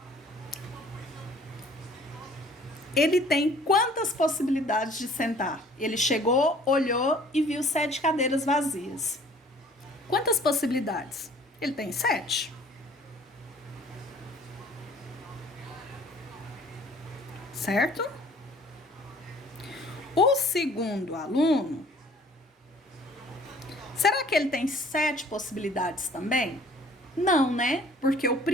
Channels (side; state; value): both; normal; correlation 0.54